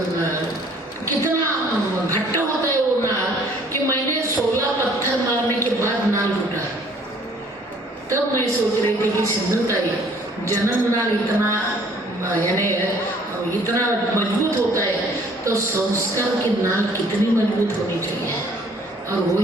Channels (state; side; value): normal; both; correlation 0.57